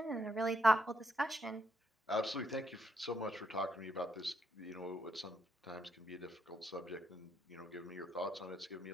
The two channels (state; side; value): normal; both; correlation 0.77